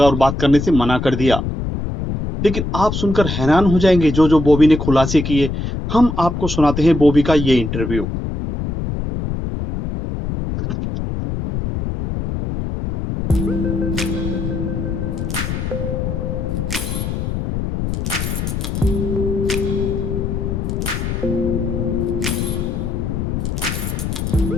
और बात करने से मना कर दिया। लेकिन आप सुनकर हैरान हो जाएंगे जो जो बॉबी ने खुलासे किए। हम आपको सुनाते हैं बॉबी का ये इंटरव्यू।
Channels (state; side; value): noise; left; rumble, 3 dB below the sound